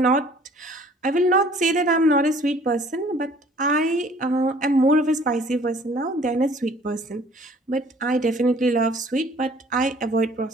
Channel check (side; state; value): both; normal; correlation 0.54